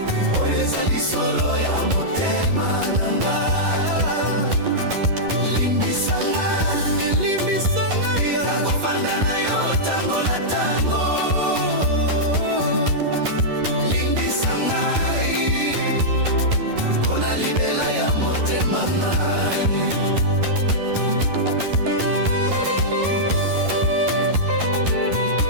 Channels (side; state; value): left; late; 11 ms